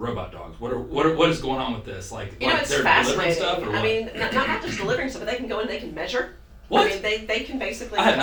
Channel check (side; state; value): both; identical; correlation 1.00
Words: dogs. What is going on with this? Like, It's they're delivering fascinating. stuff, or what? I mean, not just delivering stuff, but they can go in, they can measure. What? I mean, they can basically I have